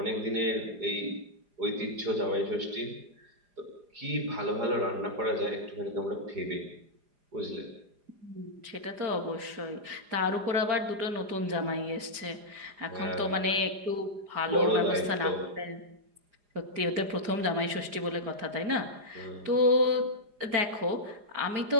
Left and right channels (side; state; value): left; late; 4.9 ms